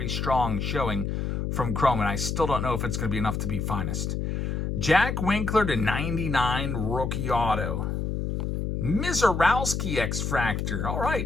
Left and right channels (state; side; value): noise; left; hum, 1 dB below the sound